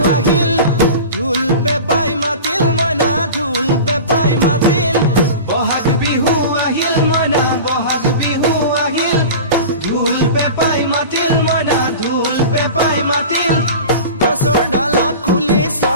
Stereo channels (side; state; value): both; inverted; correlation -0.33